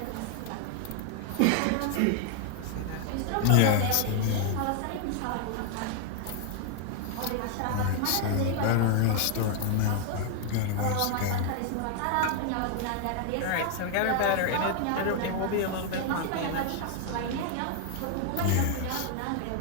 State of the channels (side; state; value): both; different; correlation 0.00